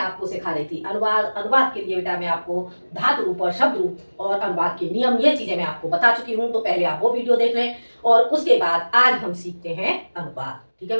सिखा रही थी अनुवाद। अनुवाद के लिए बेटा मैं आपको धातु रूप और शब्द रूप और अनुवाद के नियम, ये चीजें मैं आपको बता चुकी हूँ। तो पहले आप वो वीडियो देख लें और उसके बाद आज हम सीखते हैं अनुवाद। ठीक है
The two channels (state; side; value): inverted; both; correlation -1.00